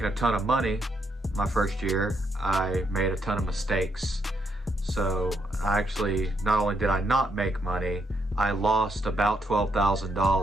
a ton of money my first year, I made a ton of mistakes. So not only did I not make money, I lost about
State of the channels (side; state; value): both; normal; correlation 0.77